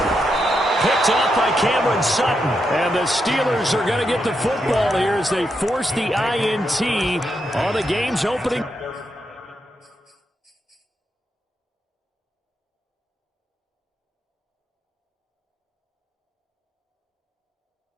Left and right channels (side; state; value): both; normal; correlation 0.83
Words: Picked off by Cameron Sutton. And the Steelers are going to get the football here as they force the INT on the game's opening.